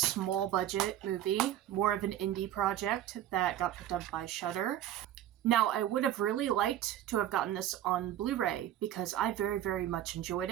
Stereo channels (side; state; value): left; quieter; 12.0 dB